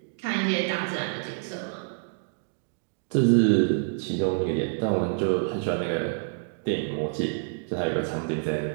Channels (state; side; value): silent; left; digital silence